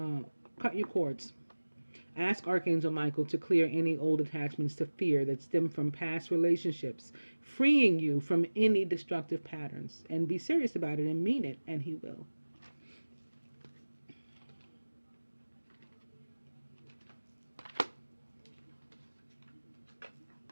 cut your cords. Ask Archangel Michael to clear any old attachments to fear that stem from past relationships, freeing you from any destructive patterns. And be serious about it and mean it, and he will.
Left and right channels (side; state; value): both; inverted; correlation -1.00